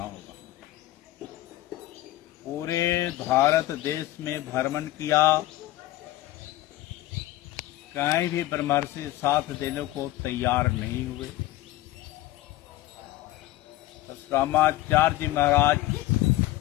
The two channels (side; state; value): right; quieter; 16.1 dB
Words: होगा। पूरे भारत देश में भ्रमण किया, कहीं भी ब्रह्मर्षि साथ देने को तैयार नहीं हुए। परशुरामाचार्य जी महाराज